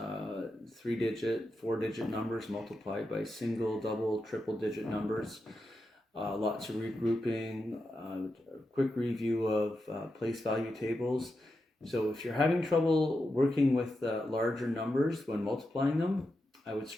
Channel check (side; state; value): both; normal; correlation 0.88